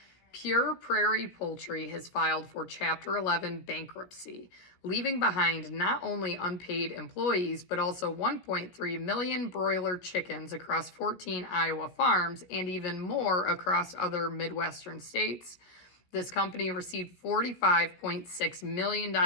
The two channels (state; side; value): late; right; 17 ms